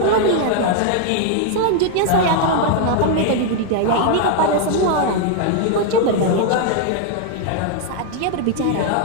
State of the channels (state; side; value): different; both; correlation 0.00